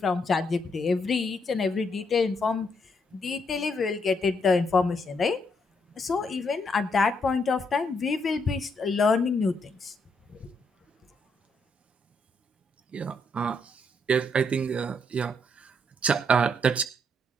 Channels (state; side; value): normal; both; correlation 0.75